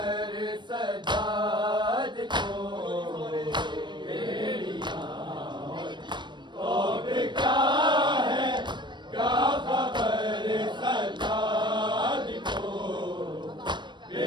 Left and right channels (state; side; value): late; left; 0.22 ms